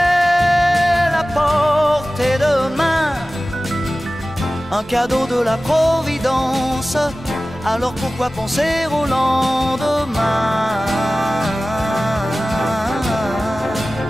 à portée de main, un cadeau de la Providence. Alors pourquoi penser au lendemain?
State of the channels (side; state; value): both; normal; correlation 0.96